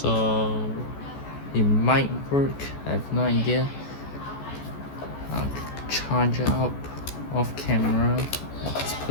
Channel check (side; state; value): right; late; 14 ms